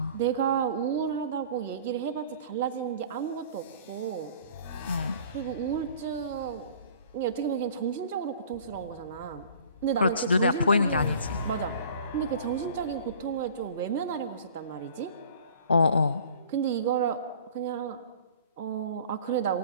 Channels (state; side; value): inverted; both; correlation -0.47